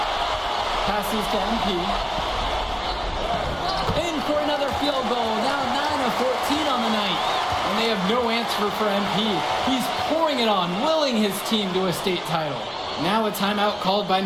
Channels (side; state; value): both; identical; correlation 1.00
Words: Passes to MP. In for another field goal. Now 9 of 14 on the night. And they have no answer for MP. He's pouring it on, willing his team to a state title. Now a timeout called by